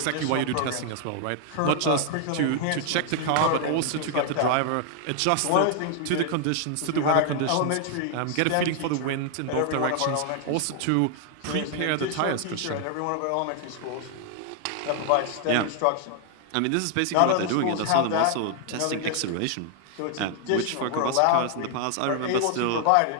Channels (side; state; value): both; different; correlation 0.00